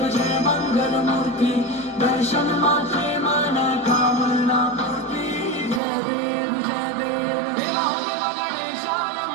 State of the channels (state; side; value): drops out; left; at 5.8 s